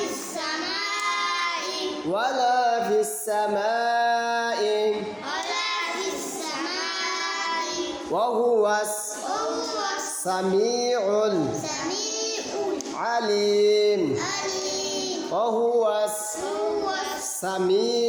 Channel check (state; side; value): identical; both; correlation 1.00